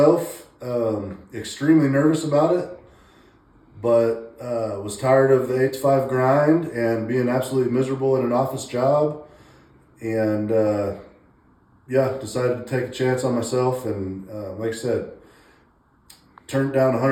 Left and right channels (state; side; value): identical; both; correlation 1.00